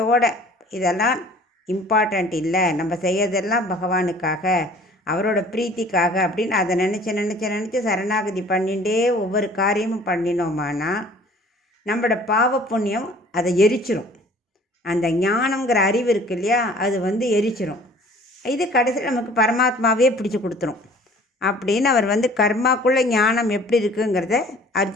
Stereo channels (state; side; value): normal; both; correlation 0.51